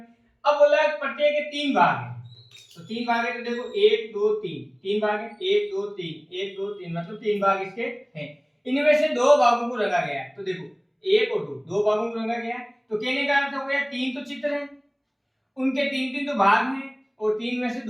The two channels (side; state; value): both; identical; correlation 1.00